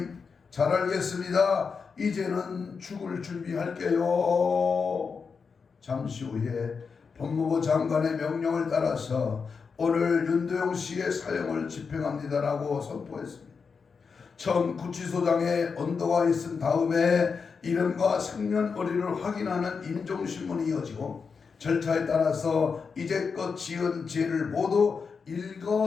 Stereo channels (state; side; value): quieter; right; 5.4 dB